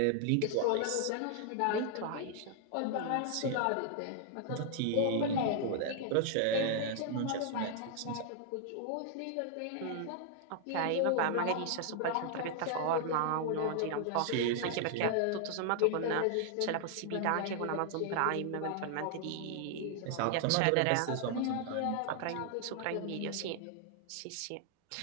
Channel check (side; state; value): both; different; correlation 0.00